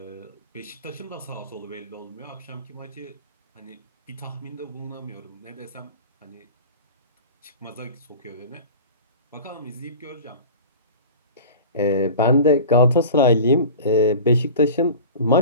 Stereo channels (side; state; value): both; inverted; correlation -0.37